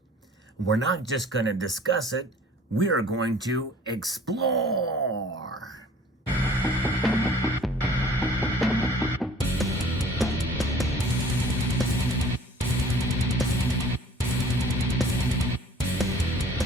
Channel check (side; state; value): both; normal; correlation 0.51